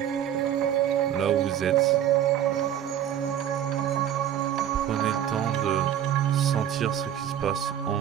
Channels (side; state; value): left; quieter; 10.4 dB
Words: là où vous êtes, prenez le temps de sentir ce qui se passe en